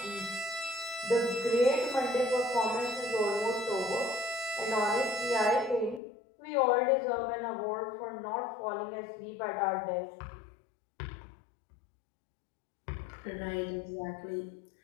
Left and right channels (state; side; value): drops out; right; at 6.0 s